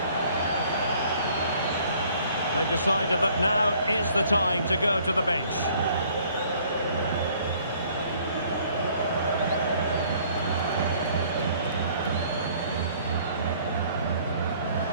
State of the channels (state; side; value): inverted; both; correlation -0.59